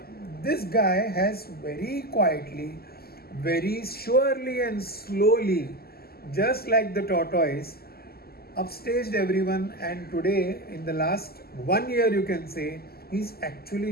This guy has very quietly, very surely and slowly, just like the tortoise, upstaged everyone, and today in the last 1 year you can say he's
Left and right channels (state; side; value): late; right; 0.45 ms